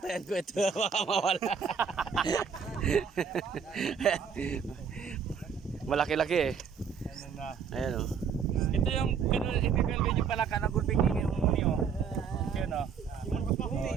ko ito. Baka mawala. Malaki-laki, eh. Ano na. Ayan, oh. Ito yung ipipilgay yung palaka na gulping ingin mo muni, oh. Yun, oh.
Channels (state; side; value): quieter; left; 6.6 dB